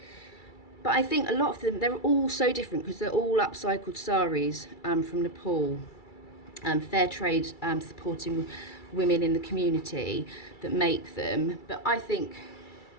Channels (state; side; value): late; right; 2.3 ms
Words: But I think a lot of them, they're all so different because they're all upcycled saris from Nepal. Fair trade supporting women in the community that make them. But I think